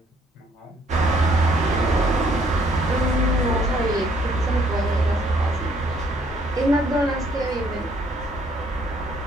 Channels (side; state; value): both; normal; correlation 0.65